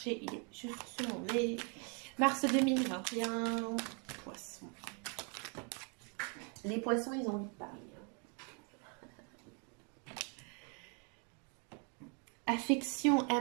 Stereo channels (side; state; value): left; quieter; 37.1 dB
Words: il est juste sur mon nez. Mars 2021, poissons. Les poissons, ils ont envie de parler. Affection,